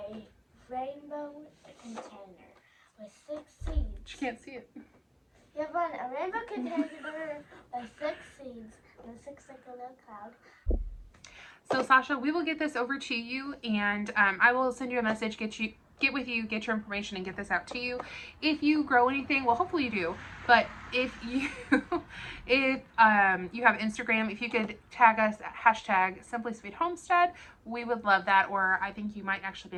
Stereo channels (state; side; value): identical; both; correlation 1.00